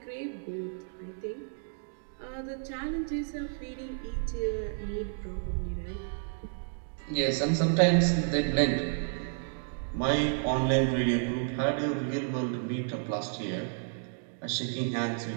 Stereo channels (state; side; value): silent; left; digital silence